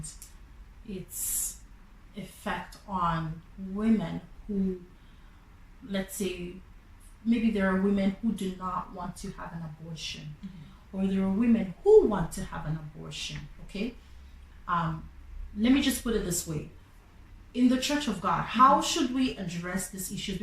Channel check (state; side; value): identical; both; correlation 1.00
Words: its effect on women who, let's say, maybe there are women who do not want to have an abortion, or there are women who want to have an abortion, okay? Let me just put it this way. In the Church of God, how should we address these issues?